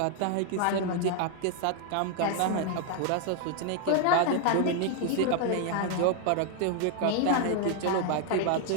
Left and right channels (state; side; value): different; both; correlation 0.00